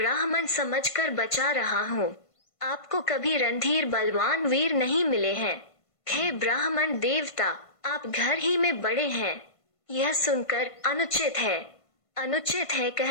समझकर बचा रहा हूँ। आपको कभी रणधीर बलवान वीर नहीं मिले हैं। हे ब्राह्मण देवता, आप घर ही में बड़े हैं। यह सुनकर अनुचित है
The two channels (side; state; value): right; late; 1.5 ms